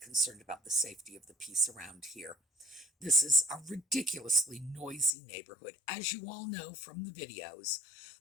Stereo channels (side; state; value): right; drops out; at 5.1 s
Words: about the safety of the piece around here. This is a ridiculously noisy neighborhood, as you all know from the videos,